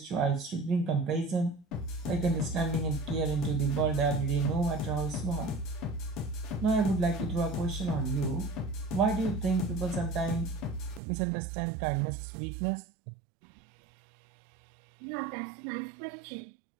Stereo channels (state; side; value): drops out; left; at 11.0 s